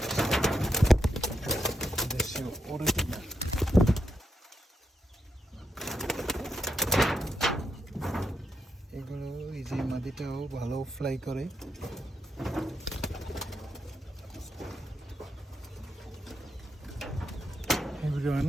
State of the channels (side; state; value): both; normal; correlation 0.82